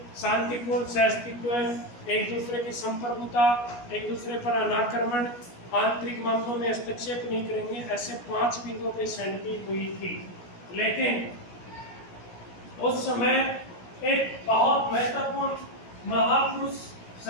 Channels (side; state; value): right; late; 17 ms